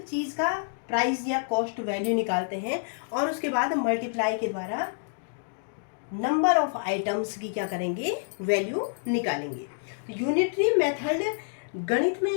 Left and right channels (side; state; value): right; silent; digital silence